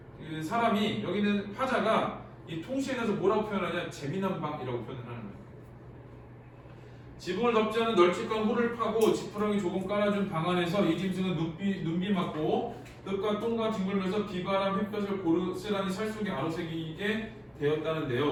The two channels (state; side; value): identical; both; correlation 1.00